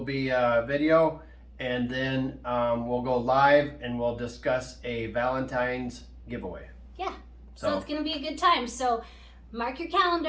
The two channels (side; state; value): both; identical; correlation 1.00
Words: be video. And then we'll go live and we'll discuss a Valentine's giveaway. Yeah. So it's going to be a good time. So mark your